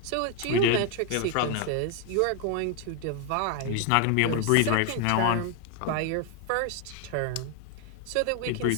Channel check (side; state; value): both; different; correlation 0.01